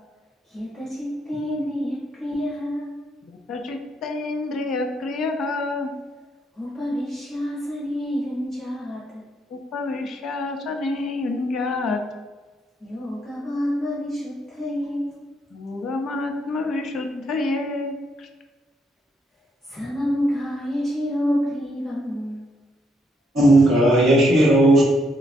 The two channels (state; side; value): normal; both; correlation 0.74